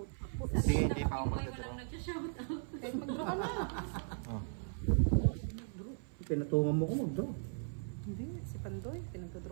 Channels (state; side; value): silent; left; 53 dB below the other